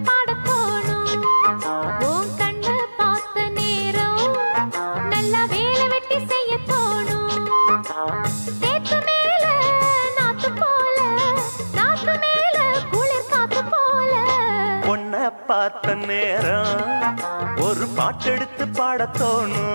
ஒரு பாட்டெடுத்து பாடத்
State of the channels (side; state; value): both; inverted; correlation -1.00